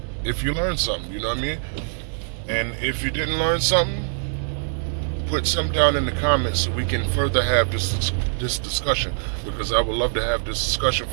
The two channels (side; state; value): left; silent; 60 dB below the other